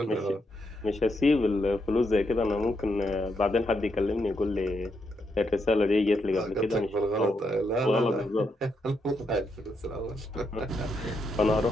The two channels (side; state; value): both; normal; correlation 0.80